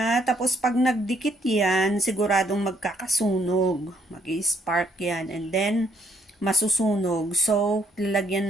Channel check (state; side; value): normal; both; correlation 0.69